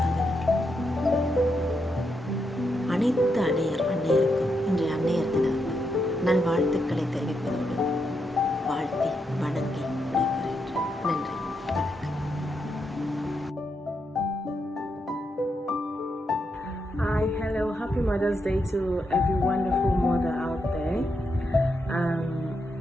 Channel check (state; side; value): normal; both; correlation 0.82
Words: அனைத்து அன்னையருக்கும் இன்றைய அன்னையர் தின நல்வாழ்த்துக்களை தெரிவிப்பதோடு வாழ்த்தி வணங்கி விடைபெறுகின்றேன். நன்றி, வணக்கம். Hi, hello, happy Mother's Day to every wonderful mother out there.